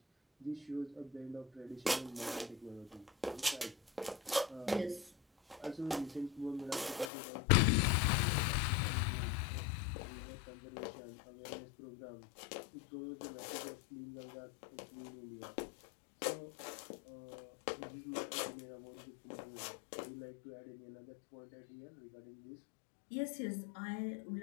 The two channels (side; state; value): right; drops out; at 7.1 s